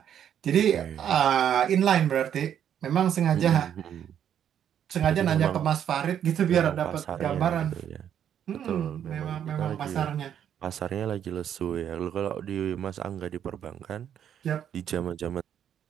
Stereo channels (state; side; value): quieter; left; 9.4 dB